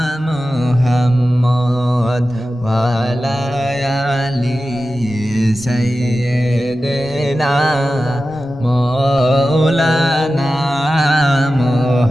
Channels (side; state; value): both; normal; correlation 0.94